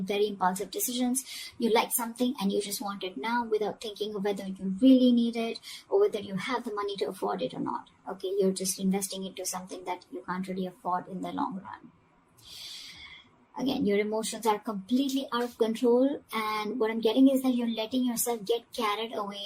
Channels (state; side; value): identical; both; correlation 1.00